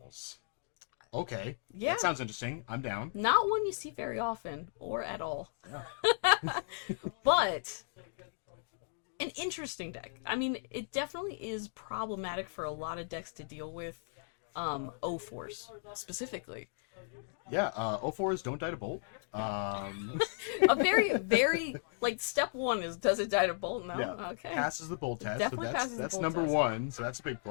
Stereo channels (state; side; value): silent; right; digital silence